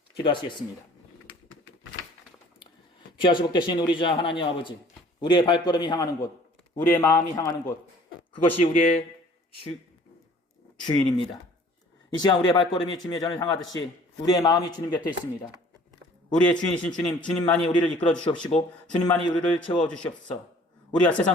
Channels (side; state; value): both; normal; correlation 0.52